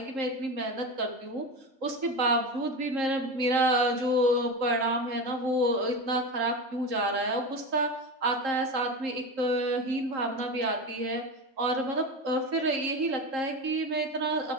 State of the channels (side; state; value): left; late; 3.8 ms